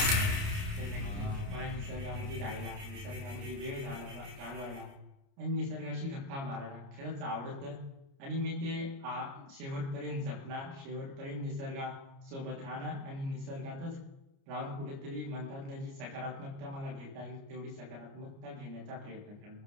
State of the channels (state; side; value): late; left; 29 ms